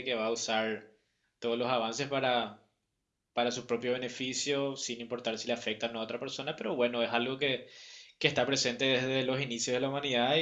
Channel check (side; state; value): both; identical; correlation 1.00